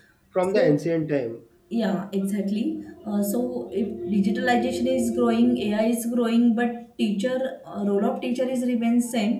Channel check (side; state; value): both; identical; correlation 1.00